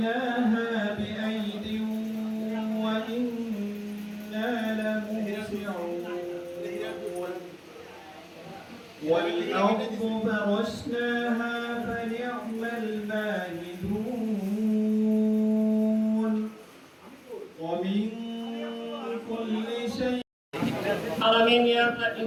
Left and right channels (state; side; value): identical; both; correlation 1.00